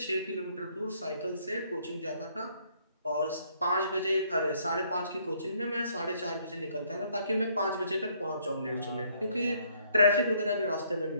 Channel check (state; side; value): inverted; both; correlation -0.66